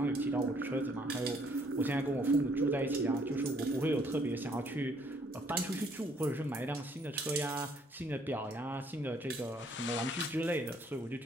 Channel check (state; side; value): normal; both; correlation 0.65